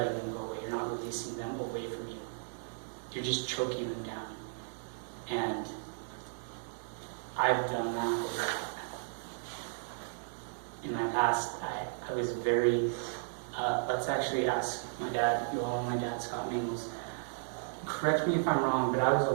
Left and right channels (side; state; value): left; silent; digital silence